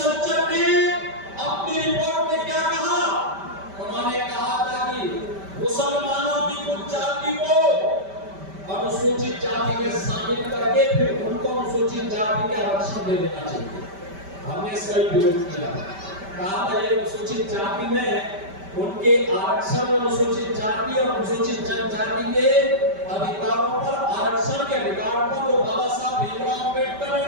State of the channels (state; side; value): late; left; 5.1 ms